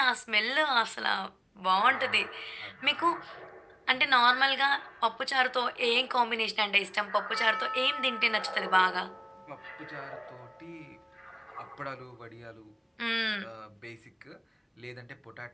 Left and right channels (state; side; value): identical; both; correlation 1.00